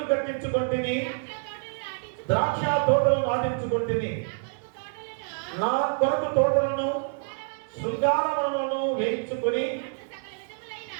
కట్టించుకుంటుని, ద్రాక్ష తోటలు నాటించుకుంటుని, నా కొరకు తోటలను శృంగారములను వేయించుకొని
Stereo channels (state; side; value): silent; left; 57 dB below the other